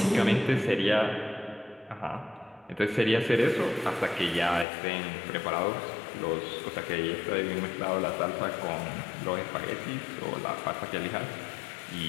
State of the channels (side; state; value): right; drops out; at 4.7 s